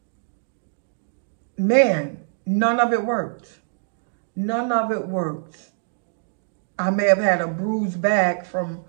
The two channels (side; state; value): left; silent; digital silence